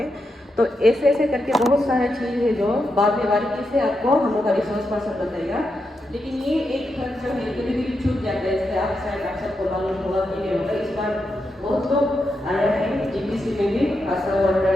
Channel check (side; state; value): both; normal; correlation 0.85